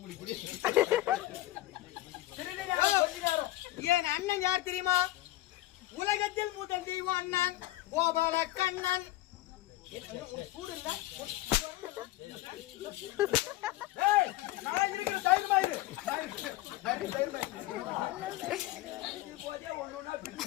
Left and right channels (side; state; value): right; quieter; 16.6 dB